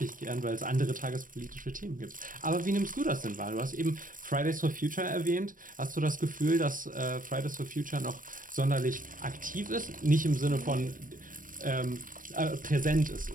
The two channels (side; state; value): left; late; 0.40 ms